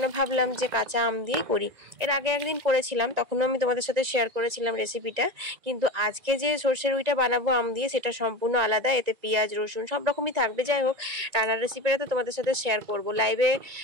ভাবলাম যে কাঁচা আম দিয়েই করি। এর আগে একদিন করেছিলাম, তখনও আমি তোমাদের সাথে শেয়ার করেছিলাম রেসিপিটা। কিন্তু আজকে যে সর্ষে রুইটা বানাবো আম দিয়ে, সেটা সম্পূর্ণ আলাদা। এতে পেঁয়াজ, রসুন সব রকমই থাকবে। যাই হোক, রান্নার রেসিপিটা তো তোমাদের সাথে শেয়ার করব লাইভে।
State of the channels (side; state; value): left; late; 1.9 ms